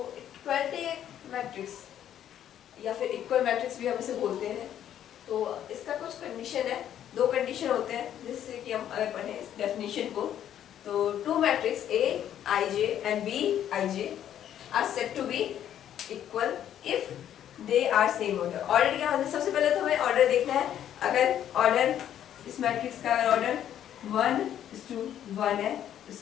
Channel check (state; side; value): quieter; right; 10.5 dB